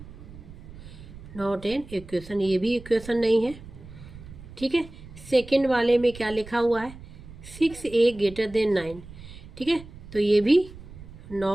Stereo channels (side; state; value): right; noise; rumble, 16 dB below the sound